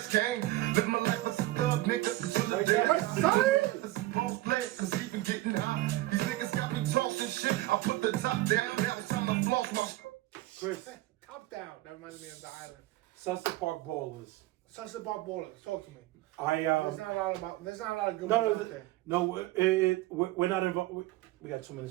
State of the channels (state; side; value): quieter; left; 17.5 dB